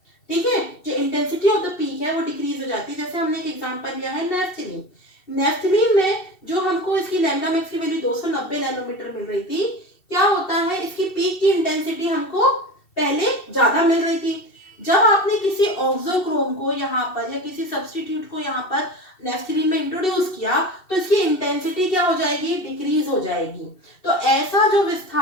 ठीक है, जो इंटेंसिटी ऑफ द पीक है वो डिक्रीज हो जाती है। जैसे हमने एक एग्जांपल लिया है नेफ्थलीन, नेफ्थलीन में जो हमको इसकी लैम्डा मैक्स की वैल्यू 290 नैनोमीटर मिल रही थी, क्या होता है, इसकी पीक की इंटेंसिटी हमको पहले ज्यादा मिल रही थी। जब आपने किसी ऑक्सोक्रोम को यहाँ पर या किसी सब्स्टिट्यूट को यहाँ पर नेफ्थलीन में इंट्रोड्यूस किया तो इसकी इंटेंसिटी क्या हो जाएगी, डिक्रीज हो जाएगी। तो ऐसा जो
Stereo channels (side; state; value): right; late; 2.7 ms